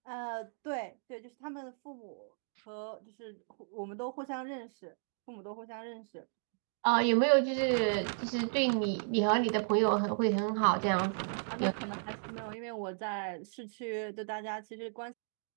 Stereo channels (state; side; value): silent; left; digital silence